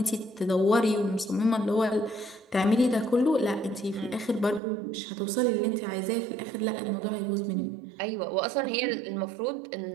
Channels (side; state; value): left; drops out; at 4.6 s